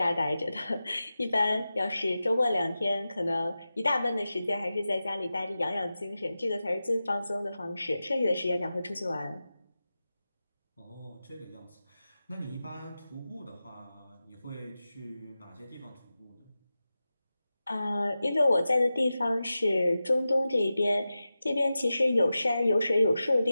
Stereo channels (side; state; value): both; inverted; correlation -0.94